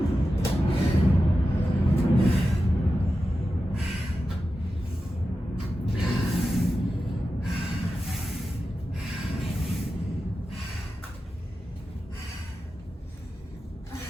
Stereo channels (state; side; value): normal; both; correlation 0.92